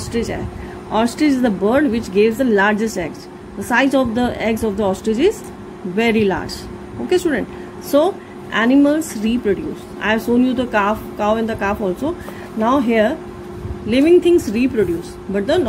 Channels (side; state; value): both; identical; correlation 1.00